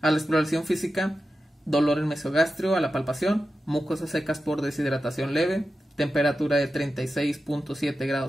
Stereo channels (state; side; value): normal; both; correlation 0.92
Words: la exploración física, dolor en mesogastrio a la palpación, mucosas secas por deshidratación leve, temperatura de 36.7